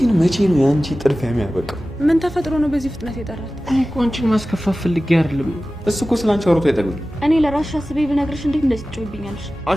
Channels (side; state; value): both; normal; correlation 0.96